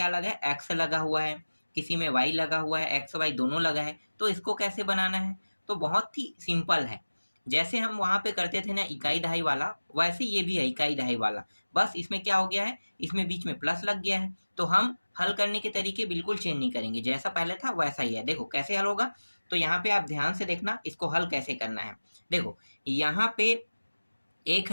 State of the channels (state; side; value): inverted; both; correlation -1.00